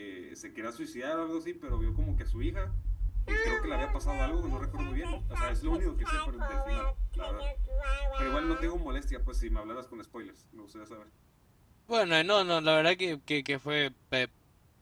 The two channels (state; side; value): identical; both; correlation 1.00